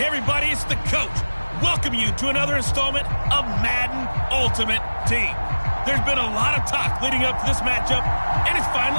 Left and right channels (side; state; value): both; inverted; correlation -1.00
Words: everybody, it's the coach. Welcome you to another installment of Madden Ultimate Team. There's been a lot of talk leading up to this matchup, and it's